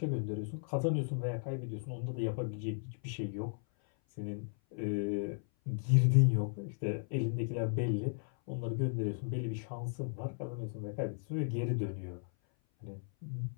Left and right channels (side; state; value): right; silent; 54 dB below the other